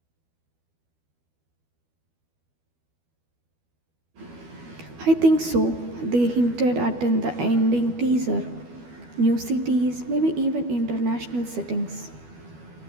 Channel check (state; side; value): late; left; 12 ms